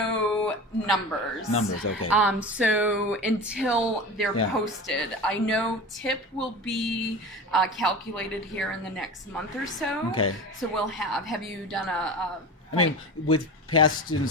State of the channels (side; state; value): both; normal; correlation 0.31